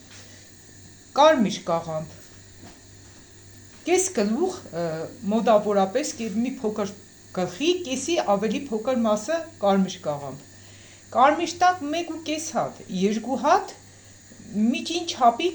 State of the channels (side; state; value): both; identical; correlation 1.00